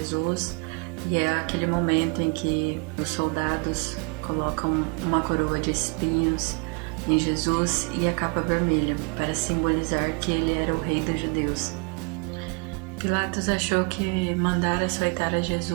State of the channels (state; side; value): quieter; left; 32.7 dB